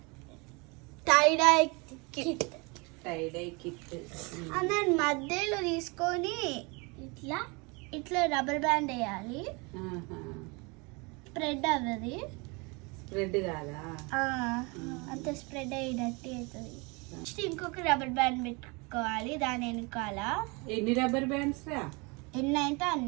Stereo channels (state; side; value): quieter; left; 28.8 dB